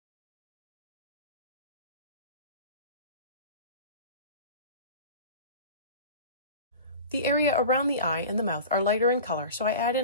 The area around the eye and the mouth are lighter in color, so I add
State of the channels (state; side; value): inverted; both; correlation -0.36